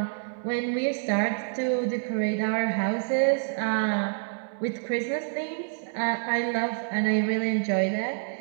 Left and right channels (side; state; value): left; silent; digital silence